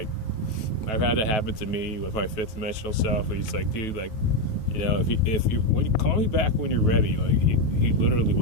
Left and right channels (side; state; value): right; late; 9.2 ms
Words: I've had that happen to me with my fifth dimensional self. He's like, dude, like, when you call me back when you're ready, like, he literally